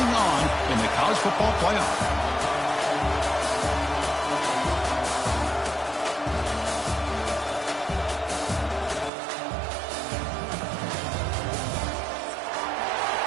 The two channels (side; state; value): left; drops out; at 9.1 s